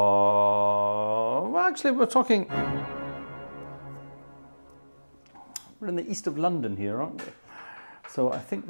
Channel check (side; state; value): both; inverted; correlation -1.00